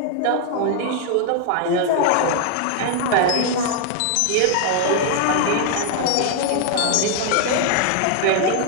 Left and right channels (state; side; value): different; both; correlation 0.00